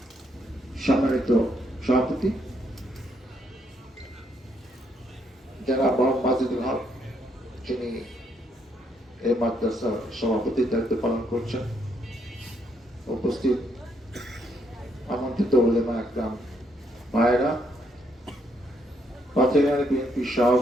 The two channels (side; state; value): both; normal; correlation 0.74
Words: সম্মানিত সভাপতি জনাব মোহাম্মদ মাজেদুল হক, যিনি এই মাদ্রাসার সভাপতির দায়িত্ব পালন করছেন, উপস্থিত আমন্ত্রিত উলেমা একরাম ভাইয়েরা, পাথরিয়া বিএনপি